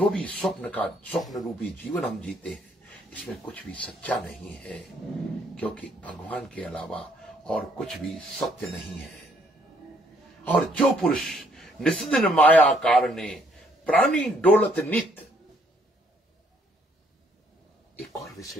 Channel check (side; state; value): both; normal; correlation 0.67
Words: भी स्वप्न रूपी जीवन हम जीते हैं, इसमें कुछ भी सच्चा नहीं है, क्योंकि भगवान के अलावा और कुछ भी सत्य नहीं है। और जो पुरुष निस्दिन माया कारणे प्राणी डोलत नित, एक और